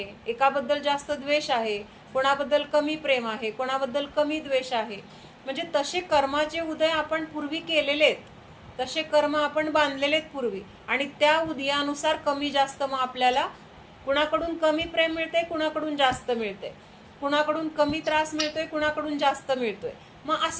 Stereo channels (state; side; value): identical; both; correlation 1.00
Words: एकाबद्दल जास्त द्वेष आहे, कोणाबद्दल कमी प्रेम आहे, कोणाबद्दल कमी द्वेष आहे. म्हणजे तसे कर्माचे उदय आपण पूर्वी केलेले आहेत, तसे कर्म आपण बांधलेले आहेत पूर्वी, आणि त्या उदयानुसार कमी जास्त मग आपल्याला कुणाकडून कमी प्रेम मिळते, कुणाकडून जास्त मिळते, कुणाकडून कमी त्रास मिळतोय, कुणाकडून जास्त मिळतोय. मग